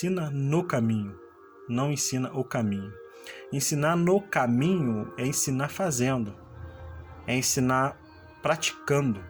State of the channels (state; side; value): identical; both; correlation 1.00